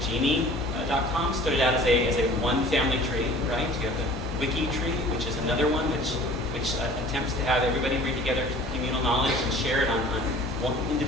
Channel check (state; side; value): normal; both; correlation 0.47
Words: Genie.com started out as a one family tree, right? You have the Wiki tree, which is another one which attempts to have everybody bring together communal knowledge and share it on one